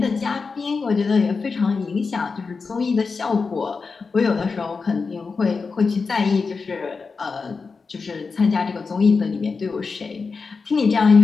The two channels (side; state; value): right; quieter; 4.7 dB